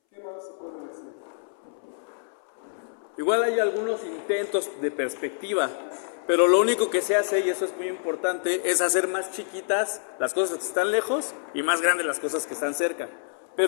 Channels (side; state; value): right; silent; 60 dB below the other